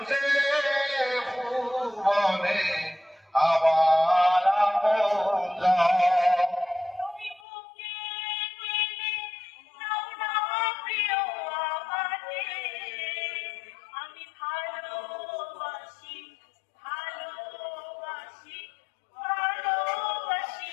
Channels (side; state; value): right; drops out; at 7.4 s